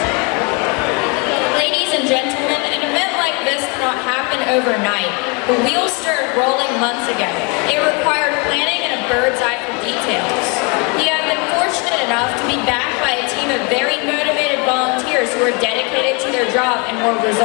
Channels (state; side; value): quieter; right; 32.0 dB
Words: Ladies and gentlemen, an event like this cannot happen overnight. The wheels started rolling months ago. It required planning and a bird's eye for details. We have been fortunate enough to be backed by a team of very motivated volunteers who are dedicated to their job and more